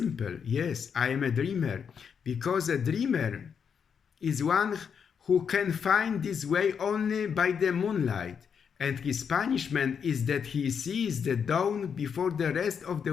Yes, I am a dreamer, because a dreamer is one who can find this way only by the moonlight, and his punishment is that he sees the dawn before the rest of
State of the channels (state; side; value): quieter; right; 6.9 dB